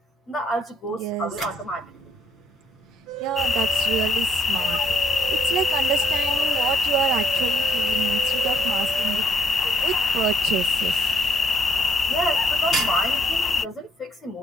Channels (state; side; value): normal; both; correlation 0.70